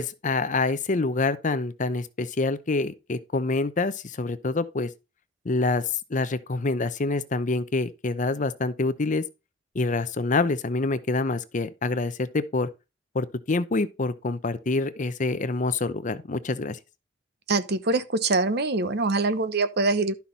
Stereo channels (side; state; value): both; normal; correlation 0.27